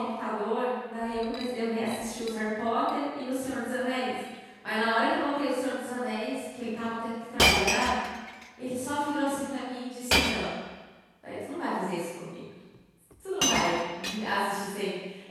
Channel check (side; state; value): both; identical; correlation 1.00